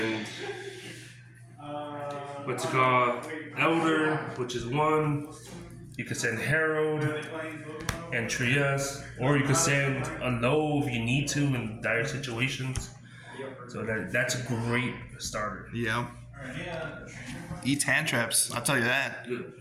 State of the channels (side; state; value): both; identical; correlation 1.00